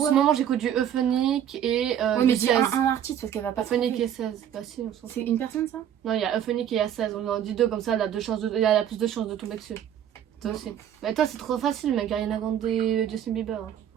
moment, j'écoute du Euphonique et Ouais, mais du dis 16. un artiste parce qu'elle va pas Euphonique trouver. et 16. Bah, si, on s'en fout. C'est une personne ça? Non, il y a Euphonique et il y a 16. On en dit deux comme ça, elle a, elle a plus de chances de tomber dessus. Toi aussi. Mais toi, c'est trop facile, mec. Ariana Grande et Justin Bieber. Hein.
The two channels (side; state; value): left; quieter; 9.9 dB